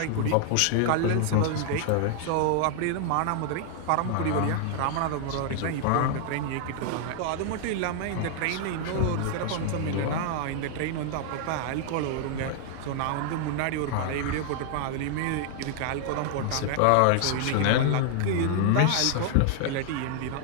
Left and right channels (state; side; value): different; both; correlation 0.00